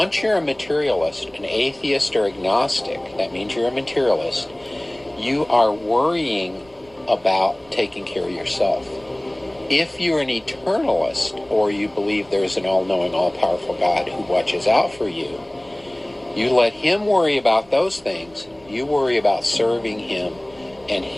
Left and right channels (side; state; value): right; noise; rumble, 28 dB below the sound